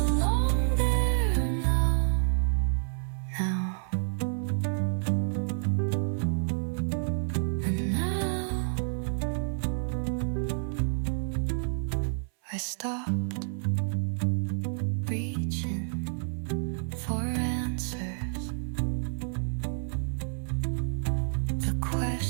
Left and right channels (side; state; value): left; silent; 58 dB below the other